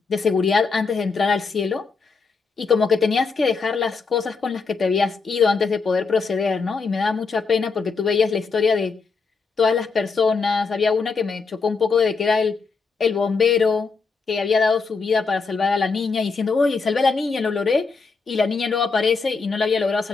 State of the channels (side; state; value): right; quieter; 4.7 dB